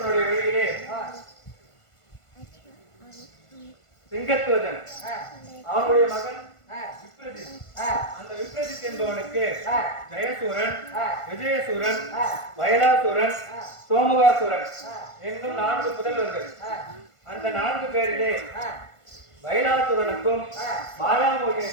வழியிலே சிங்கத்துவஜன், அவனுடைய மகன் விப்ரஜித். அந்த விப்ரஜித் என்பவனுக்கு ஜெயசூரன், விஜயசூரன், வயலாசூரன், சோமுகாசுரன் என்னும் 4 புதல்வர்கள். அந்த 4 பேரிலே வயலாசுரனுக்கும்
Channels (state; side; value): late; right; 1.5 ms